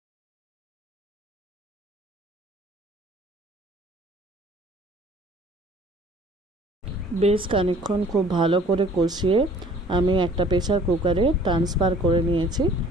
বেশ খানিকক্ষণ খুব ভালো করে কষিয়ে আমি একটা প্রেসার কুকারে ট্রান্সফার করে নিয়েছি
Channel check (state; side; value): normal; both; correlation 0.53